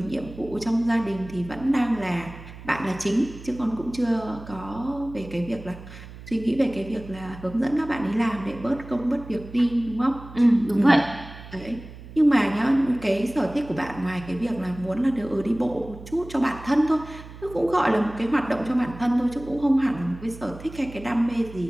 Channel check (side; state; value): right; noise; hum, 15 dB below the sound